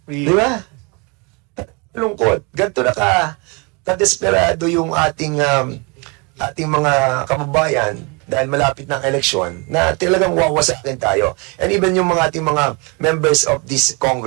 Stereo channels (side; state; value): left; quieter; 30.1 dB